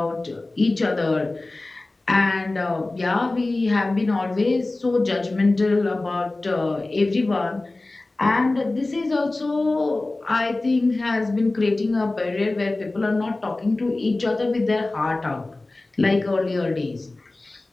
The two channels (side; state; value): right; quieter; 3.0 dB